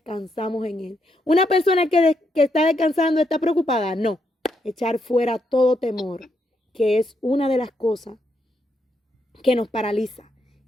en Él. Una persona que está descansando está preocupada. No, echar fuera todo temor, que es una de las cosas que nos paraliza.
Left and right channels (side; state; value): both; normal; correlation 0.79